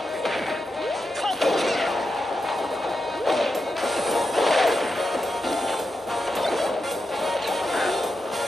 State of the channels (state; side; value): normal; both; correlation 0.87